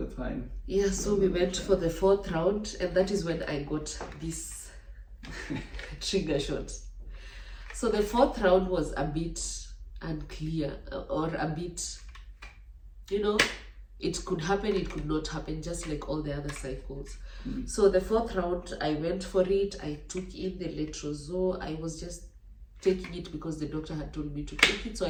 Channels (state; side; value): identical; both; correlation 1.00